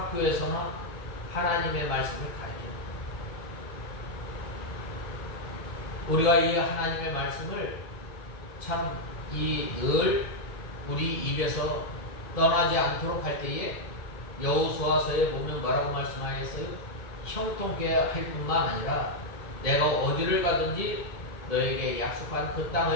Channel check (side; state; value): right; late; 1.7 ms